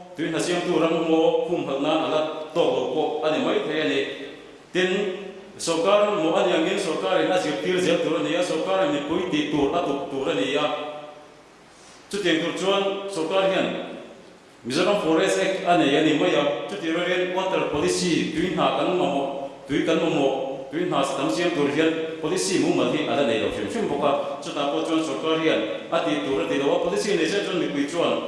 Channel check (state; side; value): identical; both; correlation 1.00